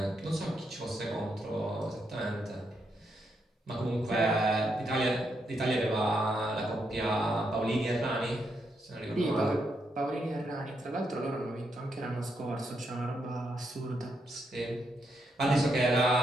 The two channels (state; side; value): normal; both; correlation 0.80